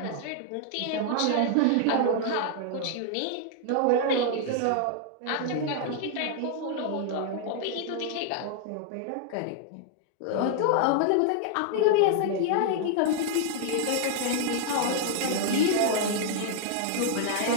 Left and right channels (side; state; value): both; different; correlation 0.00